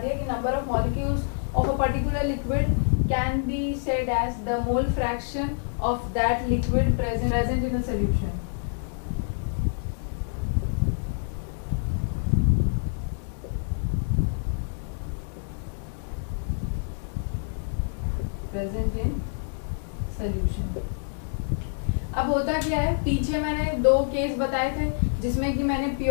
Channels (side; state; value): right; silent; digital silence